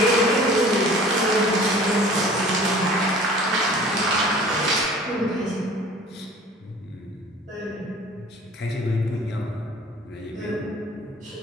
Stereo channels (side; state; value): both; normal; correlation 0.46